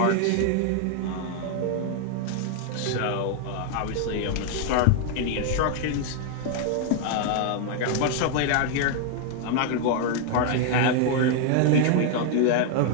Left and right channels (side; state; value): both; different; correlation 0.00